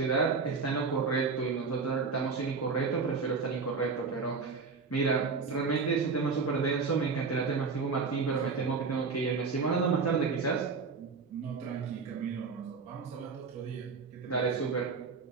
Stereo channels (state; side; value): quieter; left; 4.9 dB